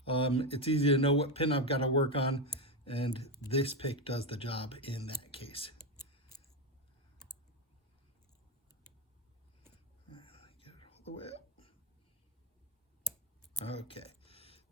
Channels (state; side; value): normal; both; correlation 0.12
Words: it's easy to know what pin I've got to work on, and this pick does the job in that case. Get it all the way up. Okay,